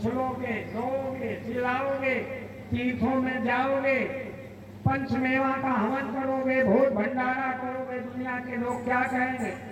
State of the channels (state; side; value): identical; both; correlation 1.00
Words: रोओगे, चिल्लाओगे, तीर्थों में जाओगे, पंचमेवा का हवन करोगे, भोज भंडारा करोगे, दुनिया के लोग क्या कहेंगे?